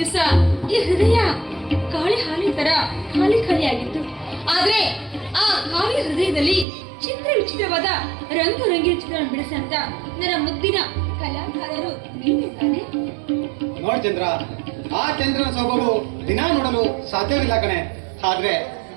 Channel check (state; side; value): drops out; left; at 6.7 s